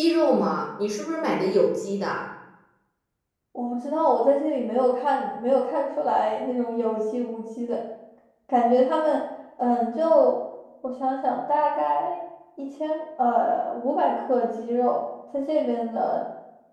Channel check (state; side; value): identical; both; correlation 1.00